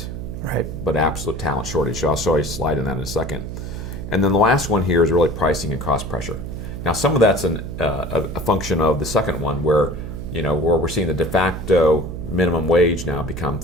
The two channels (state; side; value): noise; right; hum, 7 dB below the sound